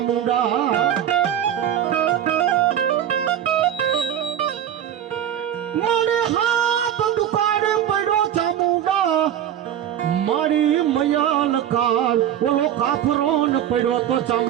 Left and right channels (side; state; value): left; quieter; 10.3 dB